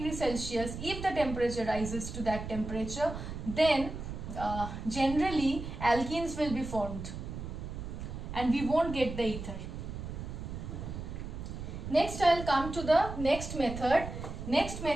Celsius, if the temperature rises to that temperature, then generally alkenes will be formed and we won't get the ether. Next I will come to the next method. Next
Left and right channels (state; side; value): noise; right; rumble, 7 dB below the sound